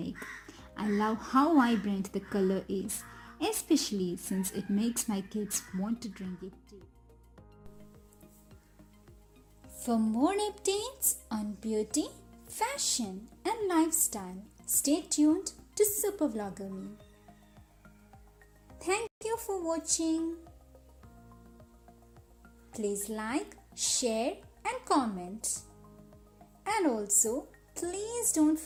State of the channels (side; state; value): both; identical; correlation 1.00